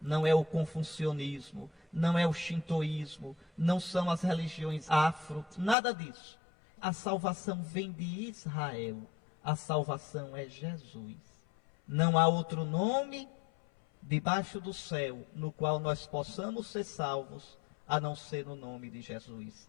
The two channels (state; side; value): drops out; right; at 5.8 s